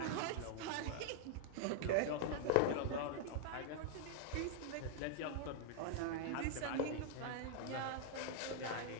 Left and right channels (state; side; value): different; both; correlation -0.01